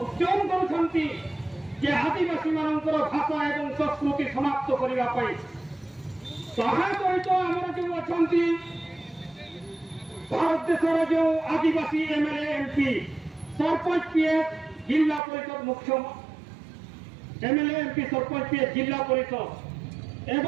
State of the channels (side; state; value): left; drops out; at 15.2 s